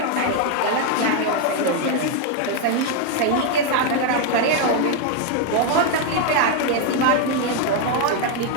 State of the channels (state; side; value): different; both; correlation 0.01